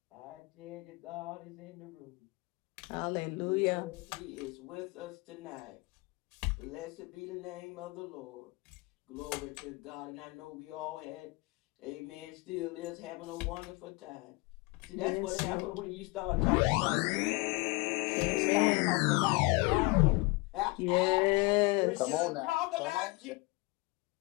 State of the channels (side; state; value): right; quieter; 25.5 dB